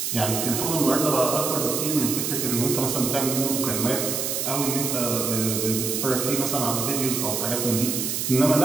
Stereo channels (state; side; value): noise; right; hiss, 1 dB below the sound